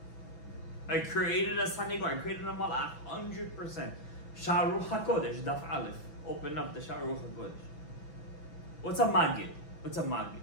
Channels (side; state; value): right; late; 6.0 ms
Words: I created a sanigor, I created a malach, 100%. Sharuch HaKodesh, Daf Aleph. Open up the Sharuch HaKodesh. What's a magid? What's a magid?